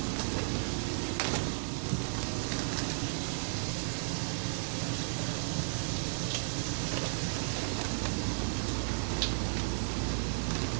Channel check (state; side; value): silent; left; digital silence